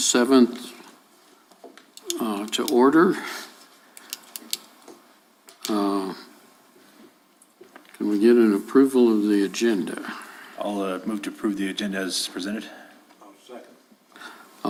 to order. Can we get an approval of the agenda? I'll move to approve the agenda as presented.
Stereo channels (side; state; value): both; identical; correlation 1.00